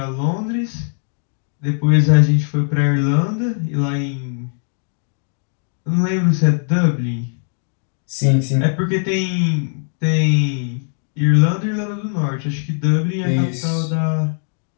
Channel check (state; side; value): silent; right; digital silence